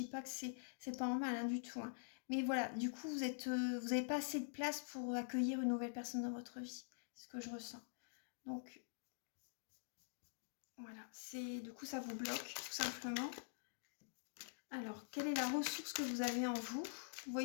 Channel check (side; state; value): right; silent; digital silence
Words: pas que c'est pas en mal hein, du tout. Hein. Mais voilà, du coup vous n'avez pas assez de place pour accueillir une nouvelle personne dans votre vie. C'est ce que je ressens. Donc voilà, du coup ça vous bloque tout simplement. Alors, quelle est la ressource que vous avez en vous? Vous